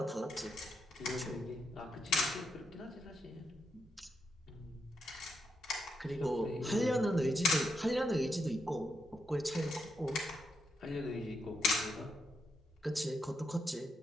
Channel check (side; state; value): both; normal; correlation 0.82